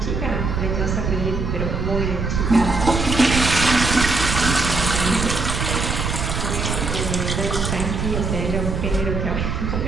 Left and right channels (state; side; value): noise; right; rumble, 2 dB below the sound